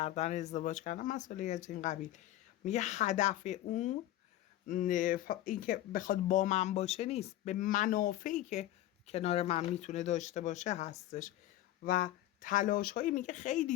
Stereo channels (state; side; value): quieter; right; 14.2 dB